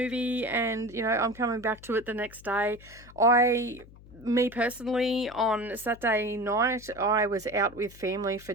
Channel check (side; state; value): left; noise; hum, 21 dB below the sound